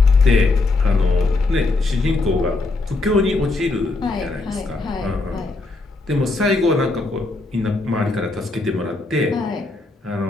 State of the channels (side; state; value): right; quieter; 3.3 dB